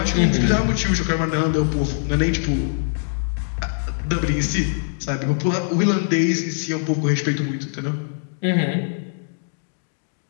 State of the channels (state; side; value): silent; right; digital silence